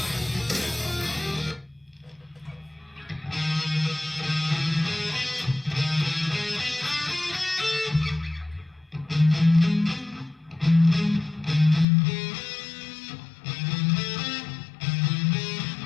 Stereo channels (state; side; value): drops out; right; at 11.9 s